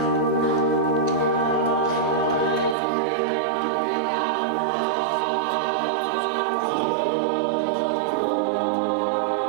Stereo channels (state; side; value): drops out; left; at 2.8 s